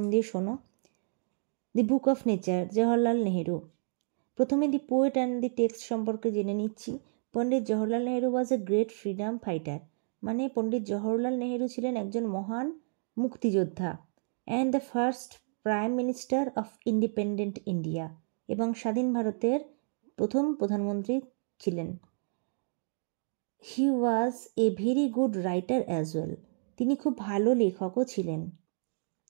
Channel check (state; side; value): silent; left; digital silence